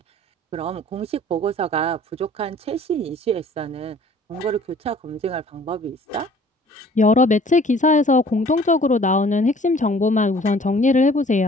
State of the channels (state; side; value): normal; both; correlation 0.52